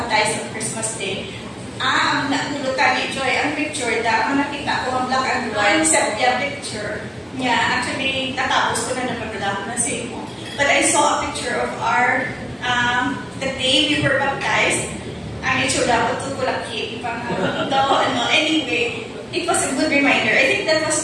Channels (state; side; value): identical; both; correlation 1.00